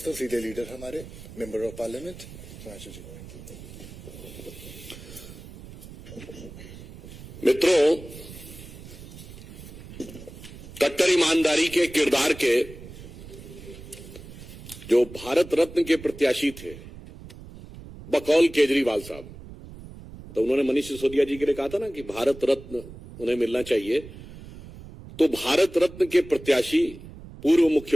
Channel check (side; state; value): right; noise; rumble, 15 dB below the sound